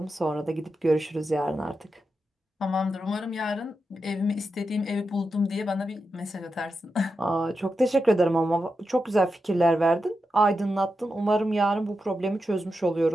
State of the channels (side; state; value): both; normal; correlation 0.88